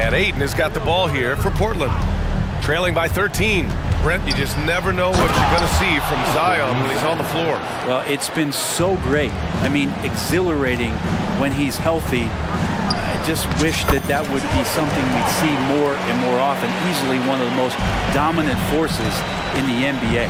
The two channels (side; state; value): both; identical; correlation 1.00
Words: Ayton has got the ball here for Portland. Trailing by 13. Brent, you just never know what you're going to see from Zion when he's on the floor. Well, it's been so great. I mean, exhilarating when he's healthy. I just wish that that would be something we'd see more and more often. Easily one of the most dominant forces in the NBA.